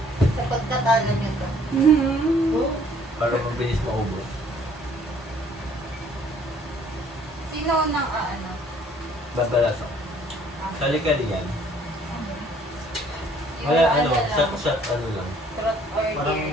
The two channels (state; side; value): normal; both; correlation 0.59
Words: Sa pagkatalo niyo to. Para mabilis maubos. Sino nang ano? Babalas ako. Kali-kali yan. Wala, ano, shot, ano lang. Trot or Parang